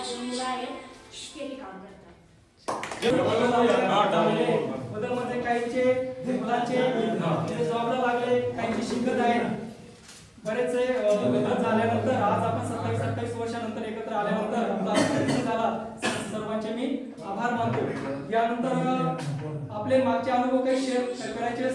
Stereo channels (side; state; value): both; identical; correlation 1.00